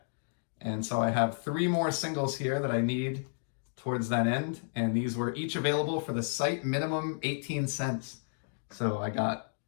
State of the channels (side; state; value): right; silent; digital silence